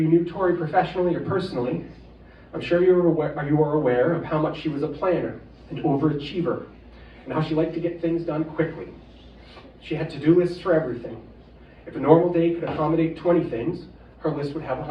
knew Tori professionally or personally, I'm sure you are aware of how much she was a planner, an overachiever, and how she liked to get things done quickly. She had to-do lists for everything. If a normal day could accommodate 20 things, her list would have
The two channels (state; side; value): identical; both; correlation 1.00